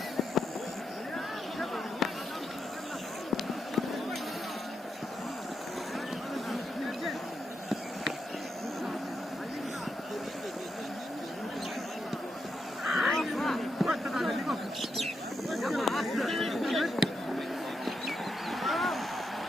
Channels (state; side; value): normal; both; correlation 0.84